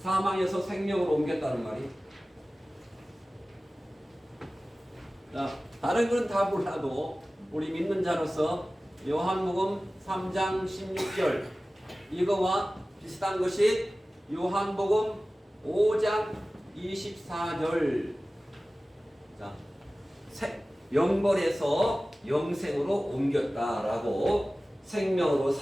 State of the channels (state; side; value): normal; both; correlation 0.97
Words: 생명으로 옮겼다는 말이. 자, 다른 건 다 몰라도 우리 믿는 자로서 요한복음 3장 16절 이거와 비슷한 것이 요한복음 5장 24절. 자, 영벌에서 영생으로 옮겼다라고, 생명으로,